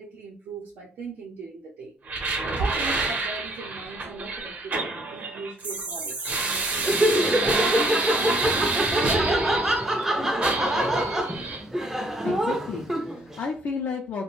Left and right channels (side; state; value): both; normal; correlation 0.65